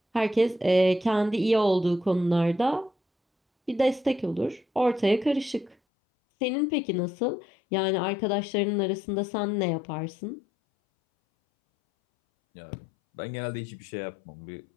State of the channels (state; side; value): drops out; right; at 5.8 s